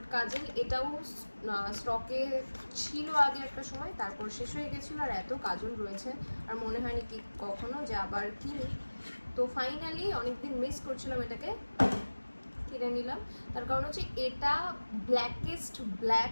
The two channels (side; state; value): both; inverted; correlation -1.00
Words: কাজল। এটাও স্টকে ছিল আগে একটা সময়, তারপর শেষ হয়ে গেছিলো। আর এত কাজল রয়েছে আর মনে হয়নি কি কখনো যে আবার কিনি। তো ফাইনালি অনেকদিন মিস করছিলাম, এটাকে কিনে নিলাম। তার কারণ হচ্ছে এটা ব্ল্যাকেস্ট